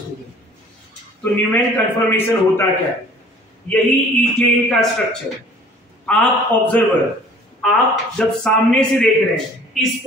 तो न्यूमैन कंफर्मेशन होता क्या है? यही इथेन का स्ट्रक्चर. आप ऑब्जर्वर, आप जब सामने से देख रहे हैं इस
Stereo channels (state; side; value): normal; both; correlation 0.51